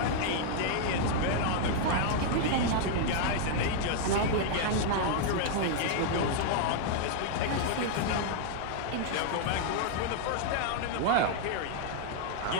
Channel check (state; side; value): different; both; correlation -0.01